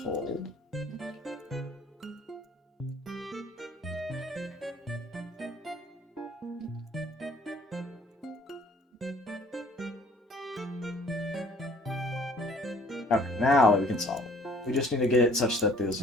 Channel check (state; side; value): normal; both; correlation 0.56